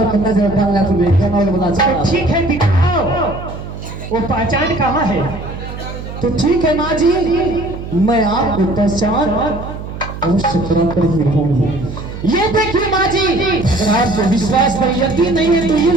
नजर डालना तुम्हें क्या नाम बता तो ठीक है दिखाओ, वो पहचान कहाँ है? तो ठीक है माँ जी, मैं आपको पहचान अवश्य करा कर ही रहूंगी। ये देखिए माँ जी, अगर आपको विश्वास पर यकीन नहीं है तो ये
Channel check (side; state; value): right; noise; hum, 10 dB below the sound